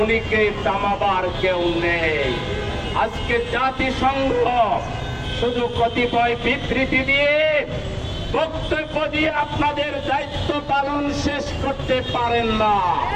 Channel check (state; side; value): identical; both; correlation 1.00